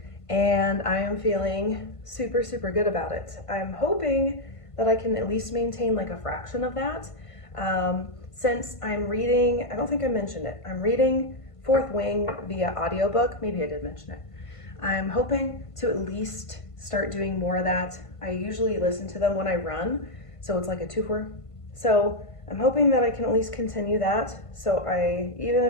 and I am feeling super, super good about it. I'm hoping that I can at least maintain like a fraction of that. Since I'm reading, I don't think I mentioned it, I'm reading Fourth Wing via audiobook. Maybe I did mention it. I'm hoping to at least start doing more of that. I usually listen to them when I run, so it's like a 2-for. So I'm hoping that I can at least continue that. So even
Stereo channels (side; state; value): right; late; 1.5 ms